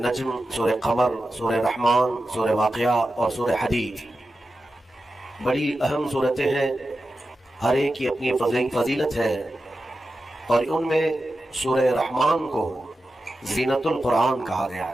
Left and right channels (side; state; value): both; normal; correlation 0.91